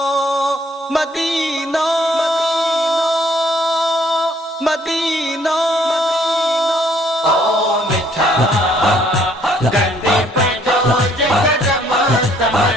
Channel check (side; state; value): both; normal; correlation 0.63